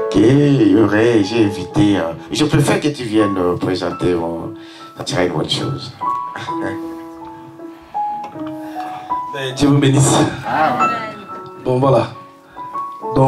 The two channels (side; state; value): both; identical; correlation 1.00